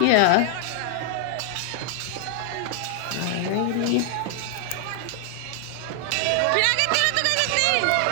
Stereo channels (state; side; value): different; both; correlation 0.00